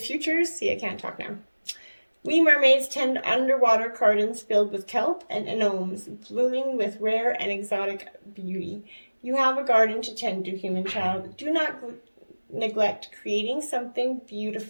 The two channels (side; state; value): both; inverted; correlation -1.00